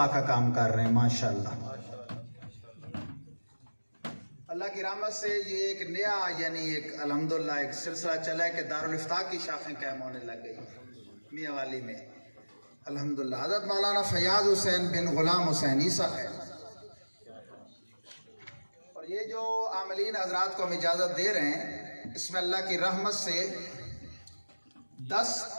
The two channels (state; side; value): inverted; both; correlation -1.00